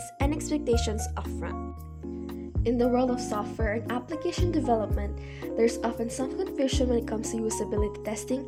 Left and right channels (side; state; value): both; identical; correlation 1.00